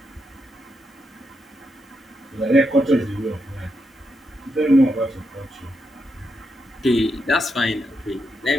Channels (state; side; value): normal; both; correlation 0.83